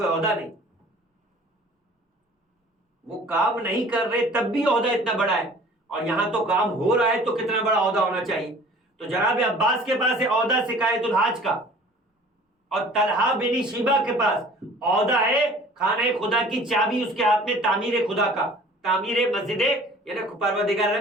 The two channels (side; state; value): both; normal; correlation 0.49